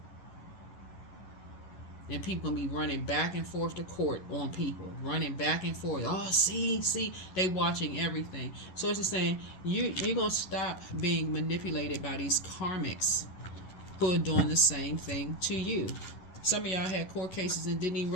And people gonna be running back and forth to court on people, running back and forth. Oh, see, they watching everything. So it's just saying you're gonna stop being manipulated by these karmics who are doing the same thing to you. Some of y'all had court cases and didn't even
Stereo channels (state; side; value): late; right; 11 ms